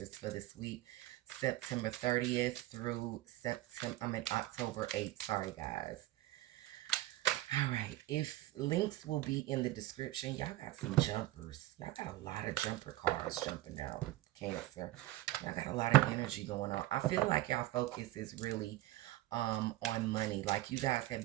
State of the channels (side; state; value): left; quieter; 16.4 dB